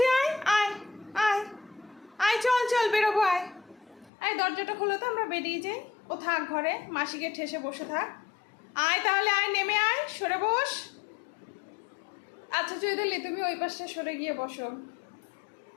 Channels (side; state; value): right; drops out; at 4.1 s